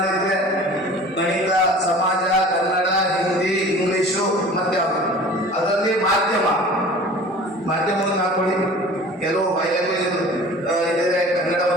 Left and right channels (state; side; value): normal; both; correlation 0.43